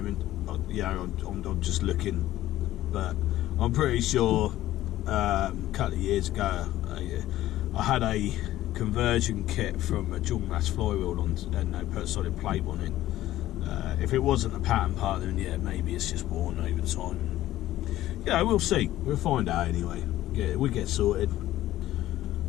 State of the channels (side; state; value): right; quieter; 14.5 dB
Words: I'm just looking, but I'm pretty sure a couple of years ago I had a conversion kit from a dual mass flywheel on, and they put a solid plate on it. If it wasn't a pattern part, then yeah, maybe it's just worn over time. Yeah, we'll see. We'll find out anyway. Yeah, we get sorted.